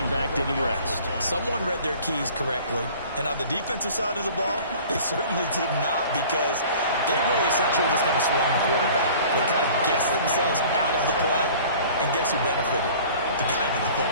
back did the rest. Someone read their keys correctly, and on the defensive side of the ball, they certainly did not, because they really essentially just kind of swung the quarterback. They kind of guessed themselves out of the play, and guess who benefited? The guy with the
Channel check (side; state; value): both; inverted; correlation -0.47